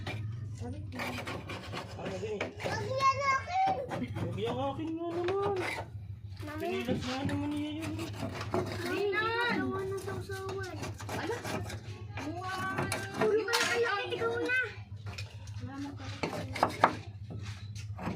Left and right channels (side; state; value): both; identical; correlation 1.00